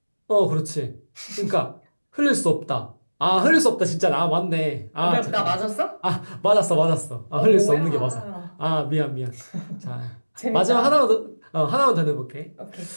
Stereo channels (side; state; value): both; inverted; correlation -1.00